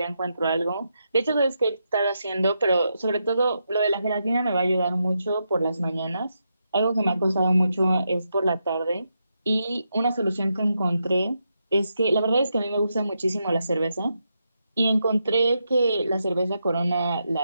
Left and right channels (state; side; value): inverted; both; correlation -0.84